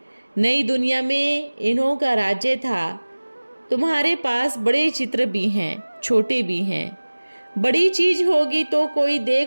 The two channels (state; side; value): inverted; both; correlation -1.00